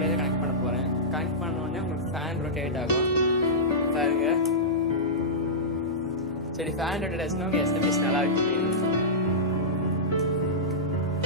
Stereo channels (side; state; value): both; normal; correlation -0.14